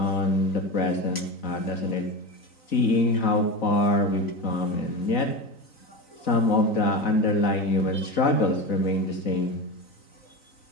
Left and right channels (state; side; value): late; right; 3.9 ms